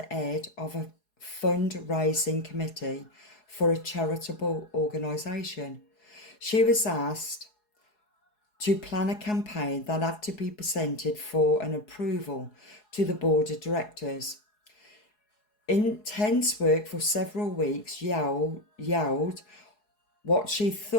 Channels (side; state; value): right; late; 4.7 ms